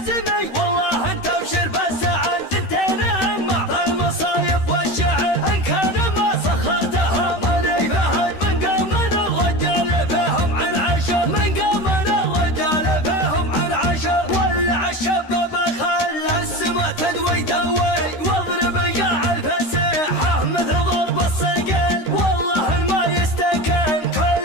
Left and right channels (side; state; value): right; late; 13 ms